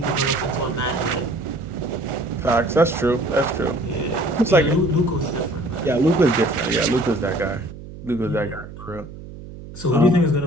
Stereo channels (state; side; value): noise; right; hum, 14 dB below the sound